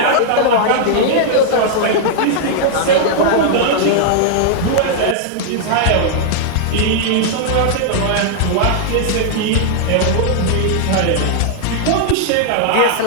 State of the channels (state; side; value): different; both; correlation -0.01